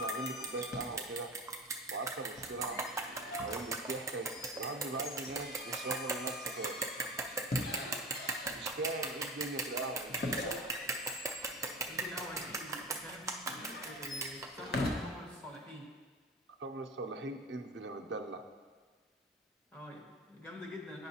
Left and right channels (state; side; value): normal; both; correlation 0.32